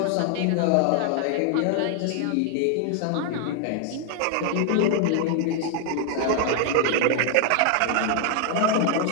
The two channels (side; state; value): both; different; correlation 0.00